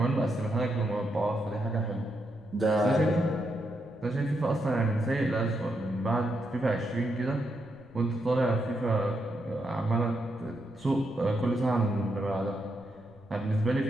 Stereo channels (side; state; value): right; noise; rumble, 28 dB below the sound